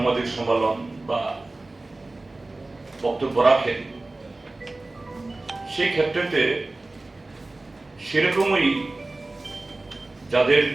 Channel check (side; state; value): left; quieter; 3.0 dB